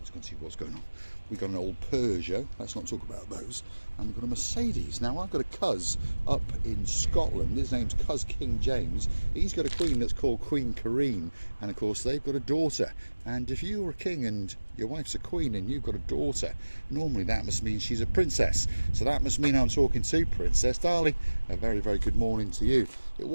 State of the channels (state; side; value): inverted; both; correlation -1.00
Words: go and see what's going on. We've got an old Peugeot, let's not talk about those, and we've got a Mercedes. Now, I've got a cuz up in Scotland. His name's Cuz King James. He's got a queen that's called Queen Karine, and of course they've got a daughter. And if you're a king and your wife's a queen and you've got a daughter, normally that must mean she's a princess. So that must mean I'm talking to Princess Darling. A very good morning to you. It